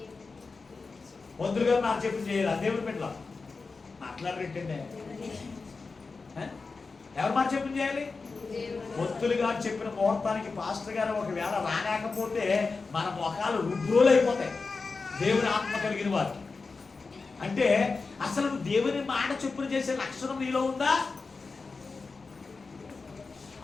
మంత్రులు గారు నాకు చెప్పిన చేయాలి. దేవుని పెట్టలా మాట్లాడరేంటండి, ఎవరు మాట చెప్పిన చేయాలి? భక్తులు గారు చెప్పిన ముహూర్తానికి పాస్టర్ గారు ఒకవేళ రాలేకపోతే మన మొఖాలు రుద్రోలు అయిపోతాయి. దేవుని ఆత్మ కలిగిన వారు అంటే అసలు దేవుని మాట చొప్పున చేసే లక్షణం నీలో ఉందా?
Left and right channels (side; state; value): right; quieter; 4.3 dB